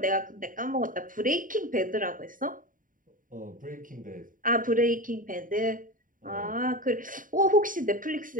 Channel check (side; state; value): left; late; 0.39 ms